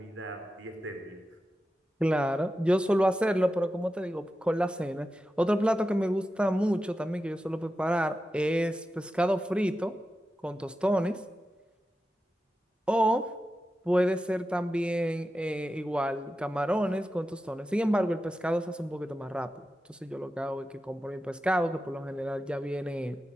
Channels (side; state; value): both; normal; correlation 0.91